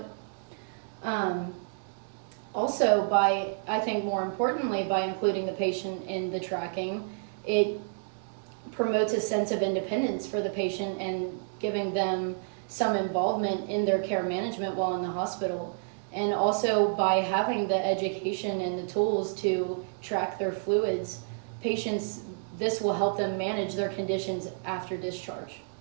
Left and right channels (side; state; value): left; silent; digital silence